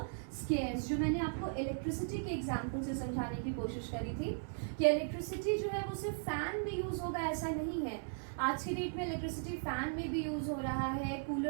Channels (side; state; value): left; silent; digital silence